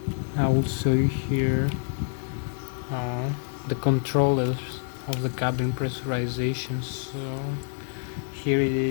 I will show you here the controllers of the cabin pressurization. So here it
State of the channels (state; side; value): silent; right; digital silence